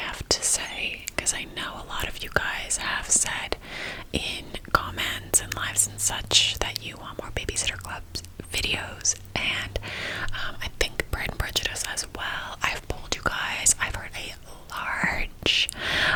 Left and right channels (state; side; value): identical; both; correlation 1.00